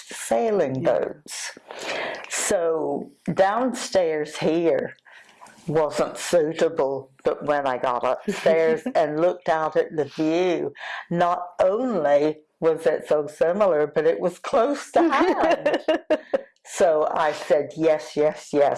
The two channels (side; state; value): both; identical; correlation 1.00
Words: the sailing boats. So downstairs here wasn't suitable, but when I got upstairs and looked out at the view, not only was it so similar, but it was close to hand. So I said, yes, yes,